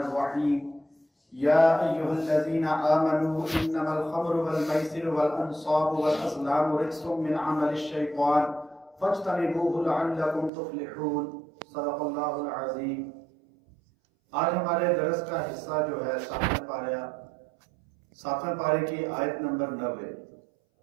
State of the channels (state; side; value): drops out; left; at 10.5 s